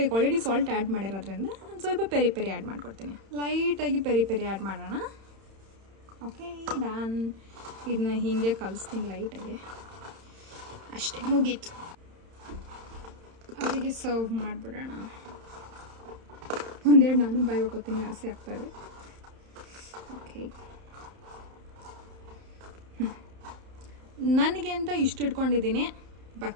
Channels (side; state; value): left; late; 31 ms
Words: ಈಗ ಆಲ್ರೆಡಿ ಸಾಲ್ಟ್ ಆ್ಯಡ್ ಮಾಡಿರೋದ್ರಿಂದ ನಾನು ಸ್ವಲ್ಪ ಪೆರಿ ಆ್ಯಡ್ ಮಾಡ್ಕೊಡ್ತೀನಿ. ಲೈಟಾಗಿ ಪೆರಿ ಆ್ಯಡ್ ಮಾಡೋಣ. Okay done. ಇದನ್ನ ಹೀಗೆ ಕಲಿಸ್ತೀನಿ ಲೈಟಾಗಿ, ಅಷ್ಟೇ ಮುಗೀತು. ಅವರಿಗೆ ಸರ್ವ್ ಮಾಡಿಬಿಡೋಣ. ಒಂದೆರಡು ನಾನು ಬಾಯಿ ಹಾಕೋತೀನಿ, ಆಸೆ ಆಗ್ತಾಯಿದೆ. ಓಕೆ, ನನಗೆ ಅಂತ ಇಷ್ಟು ಇಟ್ಕೊಂಡಿದ್ದೀನಿ,